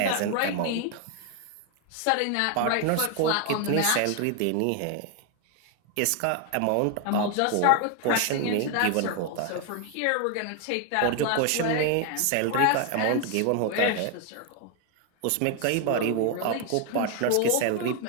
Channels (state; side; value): different; both; correlation 0.00